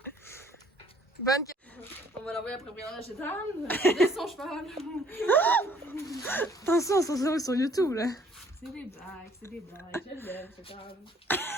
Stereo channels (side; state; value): both; normal; correlation 0.60